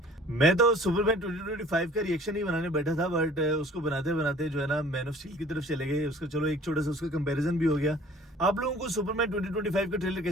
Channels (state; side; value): normal; both; correlation 0.51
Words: मैं तो सुपरमैन 2025 का रिएक्शन ही बनाने बैठा था, बट उसको बनाते बनाते जो है ना मैन ऑफ स्टील की तरफ चले गए. उसका चलो एक छोटा सा उसका कंपैरिजन भी हो गया. आप लोगों को सुपरमैन 2025 का ट्रेलर